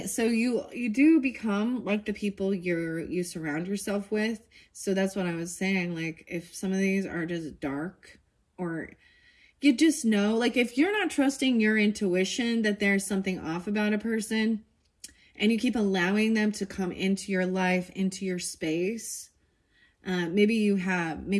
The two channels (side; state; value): both; identical; correlation 1.00